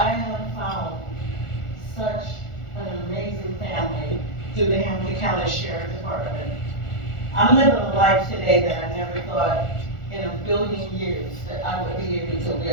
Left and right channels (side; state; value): right; late; 1.4 ms